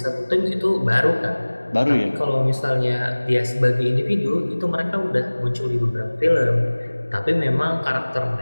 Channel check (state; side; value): inverted; both; correlation -1.00